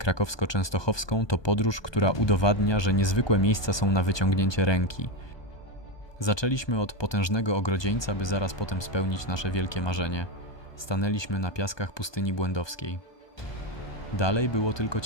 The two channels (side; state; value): right; late; 1.2 ms